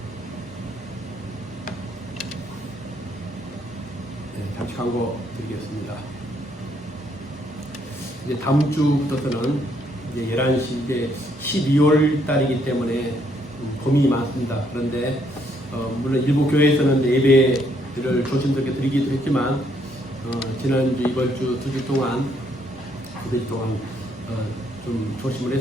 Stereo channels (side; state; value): both; normal; correlation 0.71